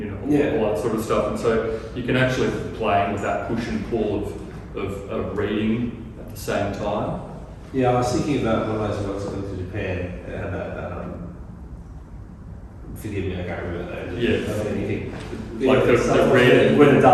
know, all that sort of stuff. And so you can actually be playing with that push and pull of reading at the same time. Yeah, I was thinking about one of those works I went to Japan, it had that, forgive me, I can't remember that. Yeah. I don't anything. Like the red. When the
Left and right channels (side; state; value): both; identical; correlation 1.00